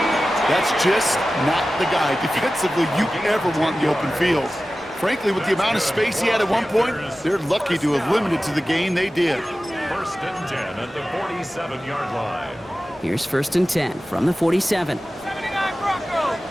That's just not the guy defensively you ever want in the open field. Frankly, with the amount of space he had at one point, they're lucky to have limited to the gain they did. 1st and 10 at the 47-yard line. Here's 1st and 10 from the 47.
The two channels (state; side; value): normal; both; correlation 0.95